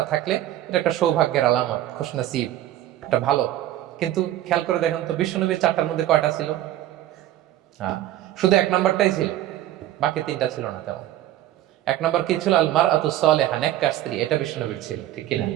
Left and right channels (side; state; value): left; quieter; 13.4 dB